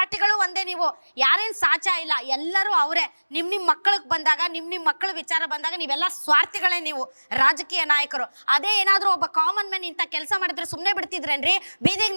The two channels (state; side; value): inverted; both; correlation -1.00